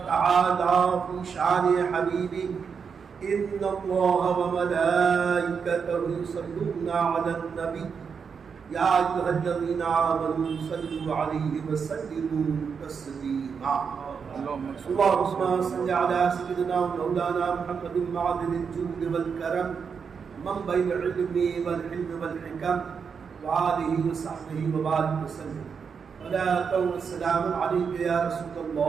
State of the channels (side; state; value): left; quieter; 6.2 dB